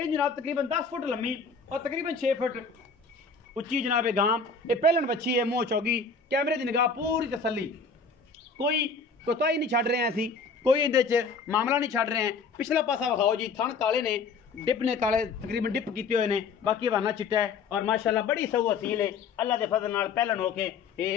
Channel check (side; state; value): right; quieter; 4.8 dB